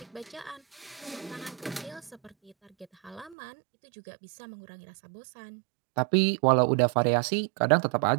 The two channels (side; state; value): left; drops out; at 3.4 s